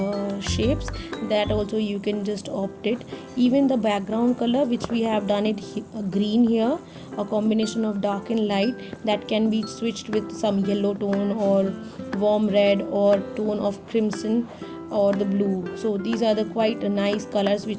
shapes, that also you can just opt it. Even the background color which we have done it green here, a combination of dark and light, that can be switched with some yellow tone or warm red or tone of crimson or the blue. So these are the quite nice colors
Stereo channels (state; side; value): identical; both; correlation 1.00